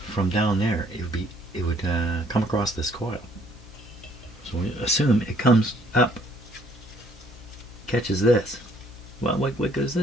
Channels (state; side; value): normal; both; correlation 0.63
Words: from down there, it would come across this coil. So we assume it comes up, catches this. Well, what good is